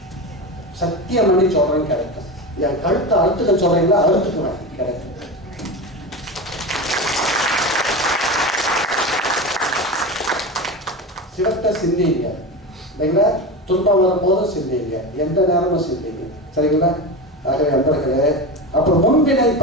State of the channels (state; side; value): normal; both; correlation 0.23